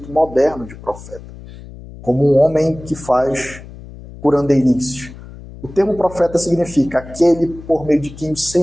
moderno de profeta, como um homem que faz curandeirices. O termo profeta significa aquele por meio de quem o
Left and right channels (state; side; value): noise; left; hum, 16 dB below the sound